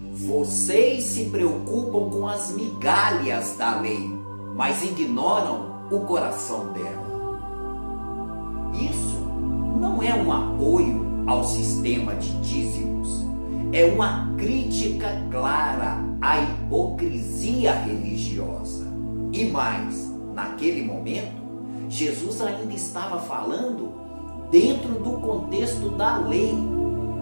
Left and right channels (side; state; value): both; inverted; correlation -1.00